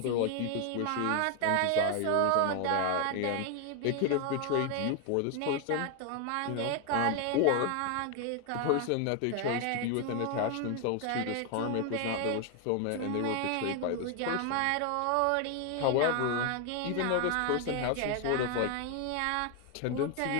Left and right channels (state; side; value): different; both; correlation 0.01